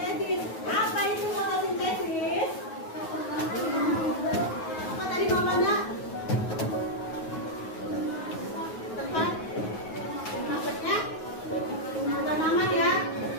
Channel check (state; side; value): late; right; 9.4 ms